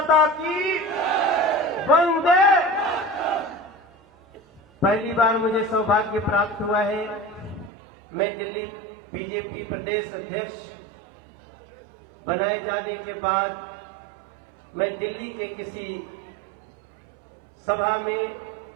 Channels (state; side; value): drops out; left; at 7.7 s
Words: की वंदे। पहली बार मुझे सौभाग्य प्राप्त हुआ है, मैं दिल्ली बीजेपी प्रदेश अध्यक्ष बनाए जाने के बाद मैं दिल्ली के किसी सभा में